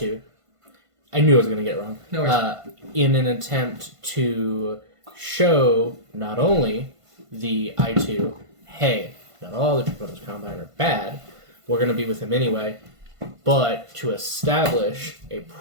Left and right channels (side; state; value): left; late; 1.5 ms